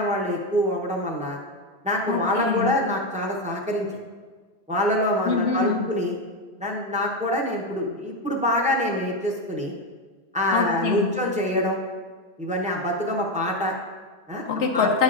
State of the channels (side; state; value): both; normal; correlation 0.10